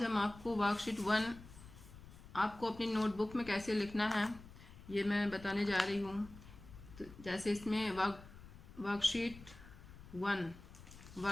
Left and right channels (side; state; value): left; noise; rumble, 17 dB below the sound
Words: हम आपको वर्कशीट 1 आपको अपनी नोटबुक में कैसे लिखना है ये मैं बताने जा रही हूँ। तो जैसे इसमें वर्कशीट 1